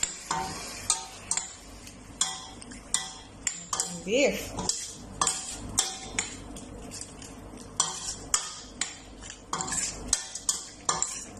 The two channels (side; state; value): both; identical; correlation 1.00